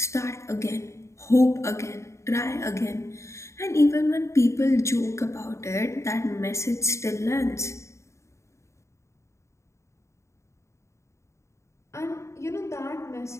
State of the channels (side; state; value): right; late; 0.14 ms